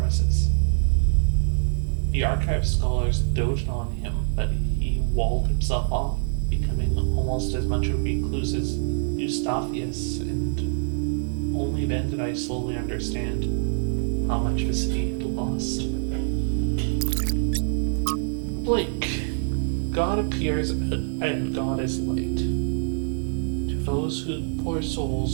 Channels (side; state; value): left; silent; 60 dB below the other